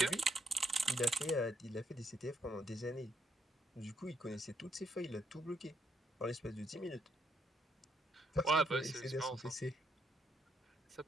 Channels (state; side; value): normal; both; correlation 0.74